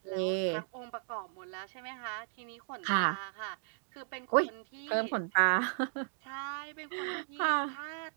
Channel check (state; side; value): silent; left; digital silence